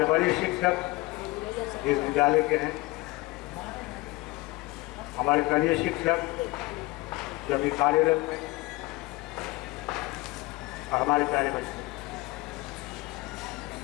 बड़े शिक्षक इस विद्यालय के हैं, हमारे कनीय शिक्षक जो भी कार्यरत हैं, और हमारे प्यारे बच्चे।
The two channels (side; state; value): right; quieter; 21.7 dB